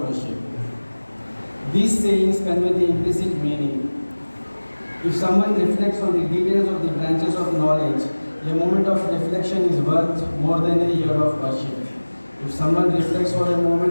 These sayings convey the implicit meaning. If someone reflects on the details of the branches of knowledge, a moment of reflection is worth more than a year of worship. If someone reflects for a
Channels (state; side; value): inverted; both; correlation -1.00